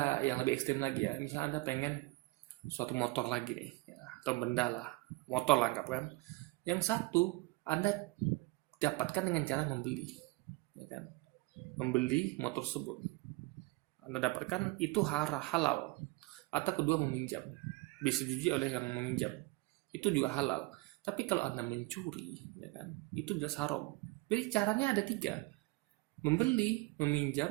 yang lebih ekstrim lagi ya, misalnya Anda pengen suatu motor lagi nih ya, atau benda lah, motor lah anggap kan. Yang satu Anda dapatkan dengan cara membeli ya kan, membeli motor tersebut Anda dapatkan itu halal. Atau kedua meminjam, disetujui oleh yang meminjam, itu juga halal. Tapi kalau Anda mencuri ya kan, itu jelas haram. Jadi caranya ada tiga: membeli,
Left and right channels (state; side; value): quieter; left; 22.6 dB